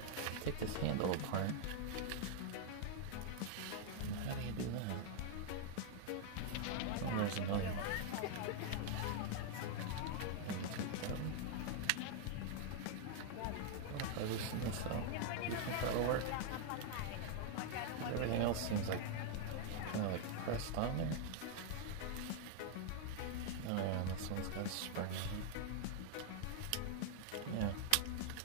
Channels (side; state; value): both; different; correlation 0.00